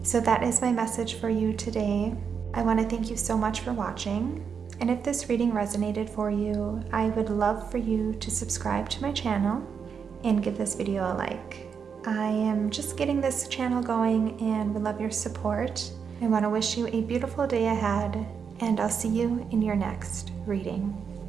So that is my message for you today. I want to thank you so much for watching. And if this reading resonated for you, I would love for you to subscribe to my channel and give this video a like. I am just getting this channel going and would love your support. I want to wish you a beautiful day ahead, and I'll see you in your next reading.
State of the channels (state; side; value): quieter; left; 6.5 dB